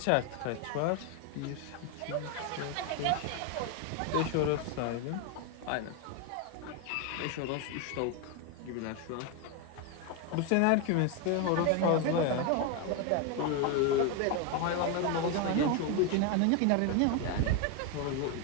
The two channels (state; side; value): different; both; correlation 0.01